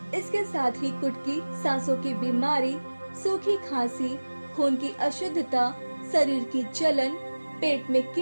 इसके साथ ही कुटकी सांसों की बीमारी, सूखी खांसी, खून की अशुद्धता, शरीर की जलन, पेट में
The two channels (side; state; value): both; inverted; correlation -1.00